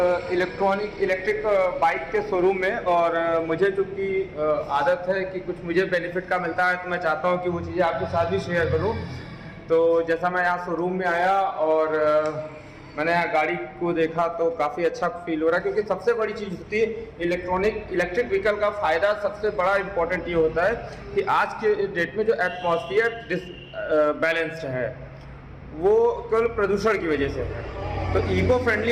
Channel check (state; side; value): identical; both; correlation 1.00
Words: इलेक्ट्रिक बाइक के शोरूम में। और मुझे चूँकि आदत है कि कुछ मुझे बेनिफिट का मिलता है, तो मैं चाहता हूँ कि वो चीज़ें आपके साथ भी शेयर करूँ। तो जैसा मैं यहाँ शोरूम में आया और मैंने यहाँ गाड़ी को देखा तो काफ़ी अच्छा फील हो रहा है, क्योंकि सबसे बड़ी चीज़ होती है इलेक्ट्रिक व्हीकल का फ़ायदा। सबसे बड़ा इम्पोर्टेंट ये होता है कि आज के डेट में जो एटमॉस्फेयर बैलेंस्ड है वो केवल प्रदूषण की वजह से है। तो इको फ्रेंडली